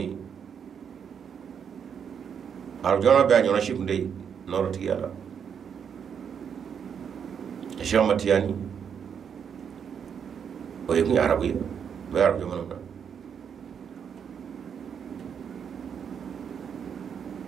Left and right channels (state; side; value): quieter; left; 7.5 dB